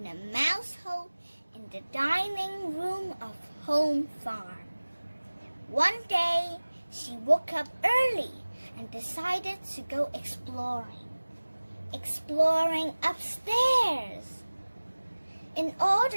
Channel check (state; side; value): inverted; both; correlation -1.00